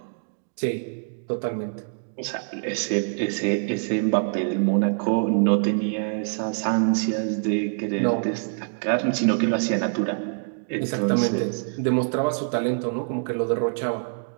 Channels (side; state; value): left; silent; digital silence